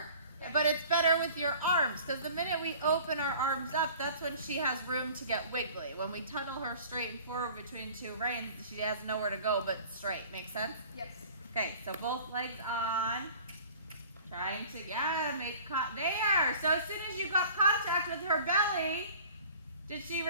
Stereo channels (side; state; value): both; inverted; correlation -0.46